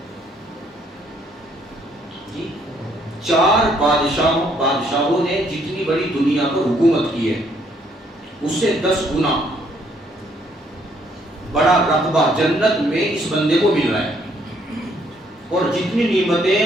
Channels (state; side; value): normal; both; correlation 0.68